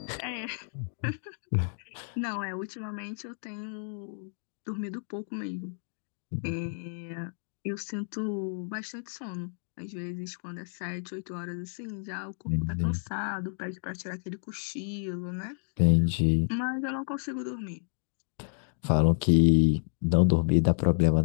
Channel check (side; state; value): right; silent; digital silence